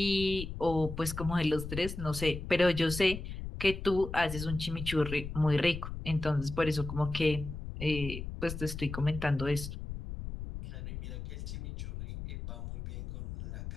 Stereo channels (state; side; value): noise; left; rumble, 8 dB below the sound